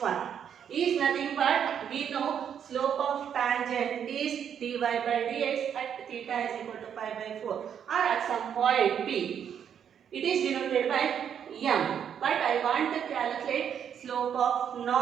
1. Is nothing but, we know slope of tangent is dy by dx at theta is equal to pi by 4 or at some point P. It is denoted by m. But I want to calculate slope of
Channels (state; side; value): quieter; left; 8.4 dB